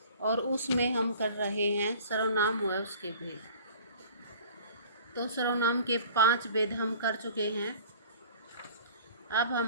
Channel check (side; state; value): both; inverted; correlation -0.46